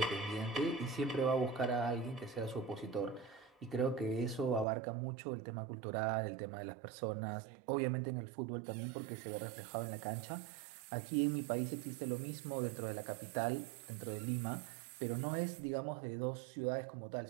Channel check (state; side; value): drops out; left; at 4.7 s